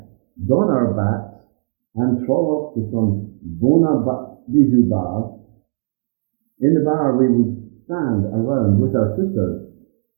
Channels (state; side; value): silent; left; digital silence